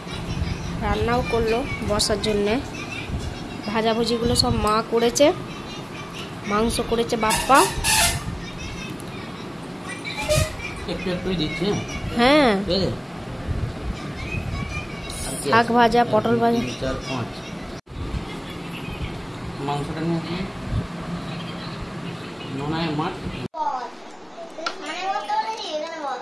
রান্নাও করলো বর্ষার জন্যে, ভাজাভুজিগুলো সব মা করেছে, মাংস করেছে বাপ্পা। একটু একটু দিচ্ছে। হ্যাঁ, শাক ভাজা, পটল ভাজা। 4, 5 মাংসটা নিয়ে নোনায় মাছ।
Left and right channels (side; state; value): both; identical; correlation 1.00